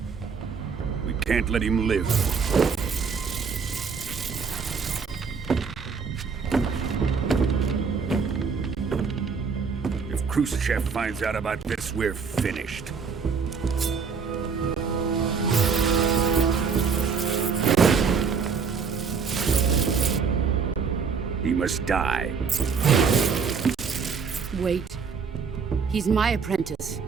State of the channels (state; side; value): quieter; left; 5.7 dB